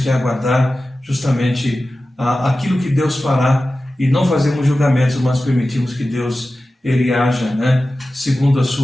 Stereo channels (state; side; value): normal; both; correlation 0.95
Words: aguardar justamente aquilo que Deus fará e não fazemos julgamentos, mas permitimos que Deus Ele haja, segundo a